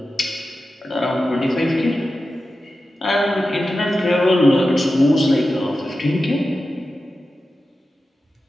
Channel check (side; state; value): both; normal; correlation 0.92